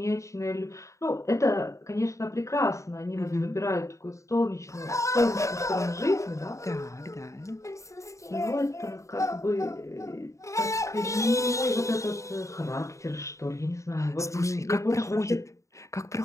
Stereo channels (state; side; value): late; right; 0.15 ms